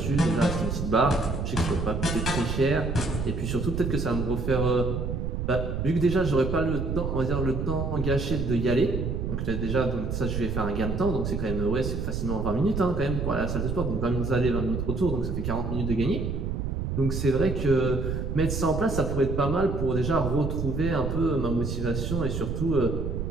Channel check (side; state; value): right; noise; rumble, 2 dB below the sound